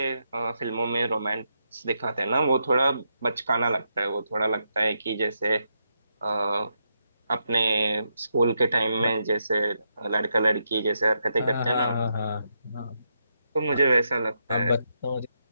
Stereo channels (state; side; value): inverted; both; correlation -0.82